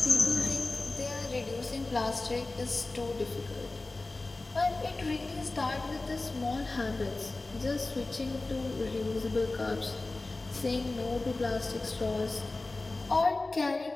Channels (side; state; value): right; quieter; 3.2 dB